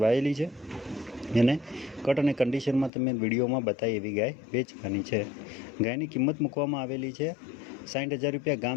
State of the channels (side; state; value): right; drops out; at 2.9 s